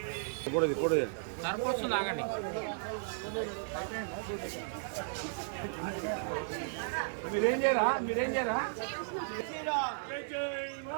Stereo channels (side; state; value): left; silent; 55 dB below the other